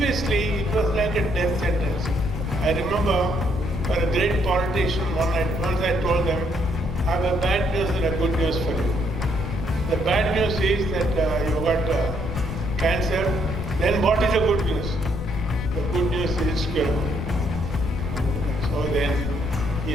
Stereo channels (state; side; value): noise; left; rumble, 5 dB below the sound